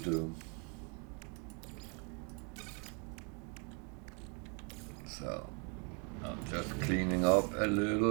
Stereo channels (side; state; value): left; quieter; 35.7 dB